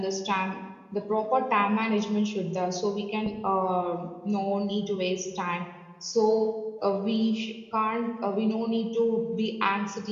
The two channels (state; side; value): identical; both; correlation 1.00